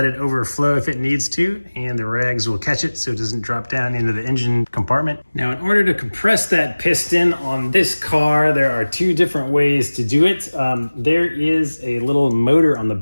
it overflow if it needs to, and the rags will catch it so it doesn't drop down into the engine compartment. Now, in order to compress that piston on this car, there are two different ways to do it. There is a little motor on the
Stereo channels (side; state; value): both; inverted; correlation -1.00